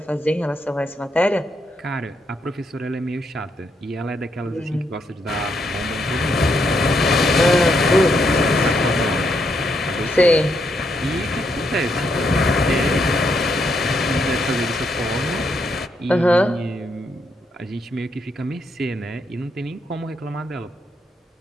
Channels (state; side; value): normal; both; correlation 0.77